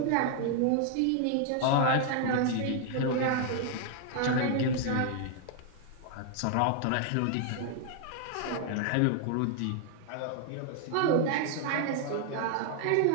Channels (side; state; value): both; different; correlation 0.00